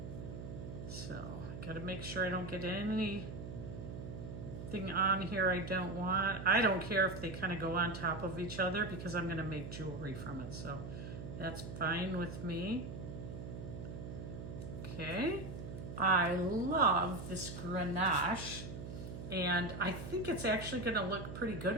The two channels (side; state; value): right; noise; hum, 8 dB below the sound